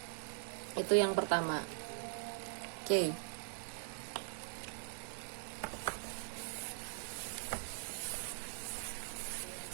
itu yang pertama. Oke.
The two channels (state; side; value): silent; left; digital silence